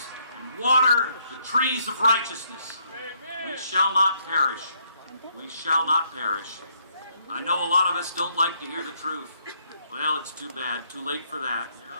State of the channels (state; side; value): inverted; both; correlation -0.72